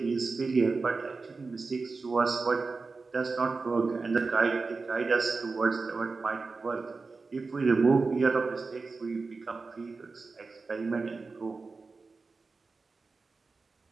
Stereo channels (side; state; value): left; quieter; 4.1 dB